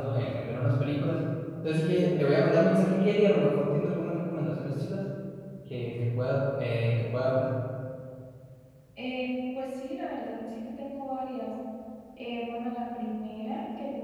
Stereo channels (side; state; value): both; identical; correlation 1.00